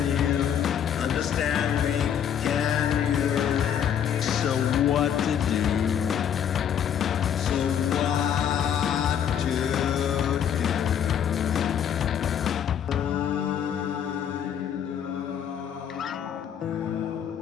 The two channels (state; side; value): quieter; right; 8.9 dB